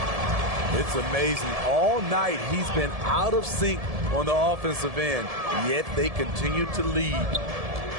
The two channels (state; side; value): late; left; 1.7 ms